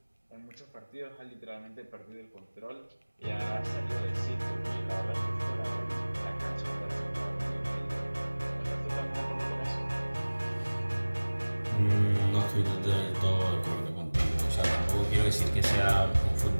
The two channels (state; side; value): inverted; both; correlation -1.00